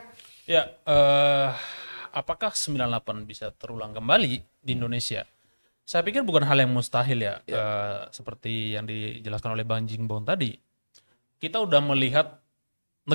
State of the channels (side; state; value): both; inverted; correlation -1.00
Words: ya, apakah 98 bisa terulang kembali di Indonesia? Saya pikir bukan hal yang mustahil ya, seperti yang dijelaskan oleh Bang Jingbong tadi. Kita udah melihat